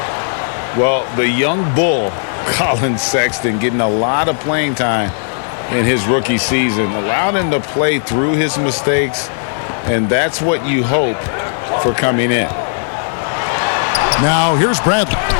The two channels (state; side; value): silent; right; digital silence